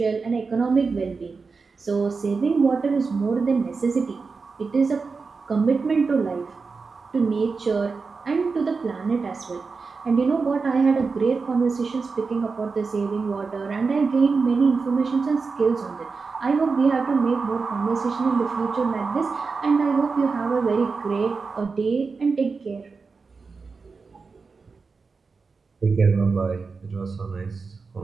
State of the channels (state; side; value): quieter; left; 4.6 dB